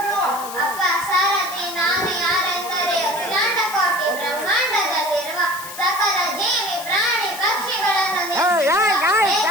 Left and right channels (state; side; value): noise; left; hiss, 12 dB below the sound